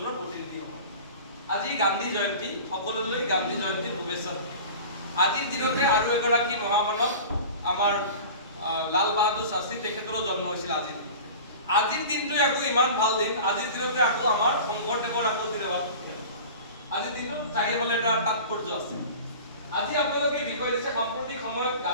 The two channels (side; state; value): both; inverted; correlation -0.38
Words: প্ৰতিনিধি হ'ব আজি গান্ধী জয়ন্তী সকলোলৈ গান্ধী জয়ন্তীৰ শুভেচ্ছা আজিৰ দিনতে আৰু এগৰাকী মহামানৱ আমাৰ লাল বাহাদুৰ শাস্ত্ৰী তেখেতৰো জন্ম হৈছিল আজিৰ দিনতে আজিৰ দিনটো আকৌ ইমান ভাল দিন আজিৰ দিনতে আকৌ আমাৰ শংকৰদেৱৰ আকৌ তিৰবাদ আজিৰ দিনটো চাৰিফালে এটা তাৎপৰ্য আছে আজি আপোনালোকে বিষয় দিছে সাম্প্ৰতিক সময়ত